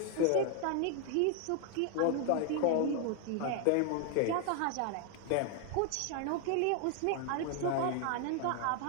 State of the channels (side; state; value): both; different; correlation 0.00